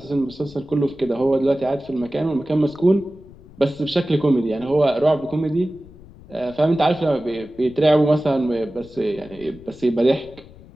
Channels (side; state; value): left; noise; rumble, 21 dB below the sound